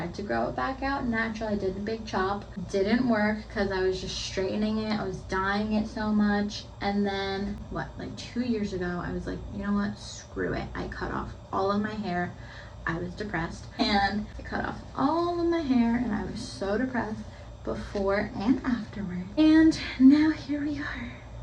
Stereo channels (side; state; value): both; identical; correlation 1.00